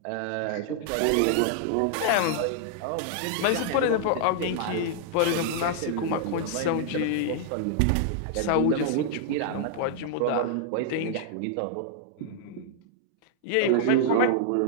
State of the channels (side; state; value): both; different; correlation -0.01